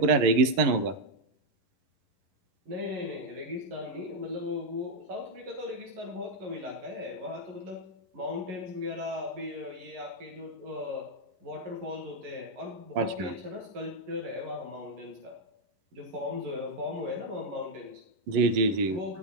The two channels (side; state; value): left; late; 11 ms